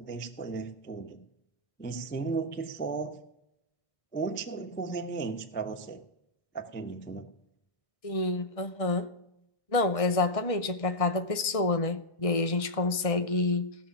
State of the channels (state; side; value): late; right; 1.6 ms